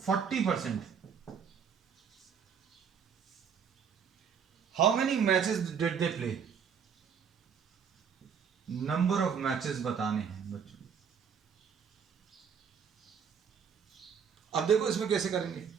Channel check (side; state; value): left; quieter; 7.0 dB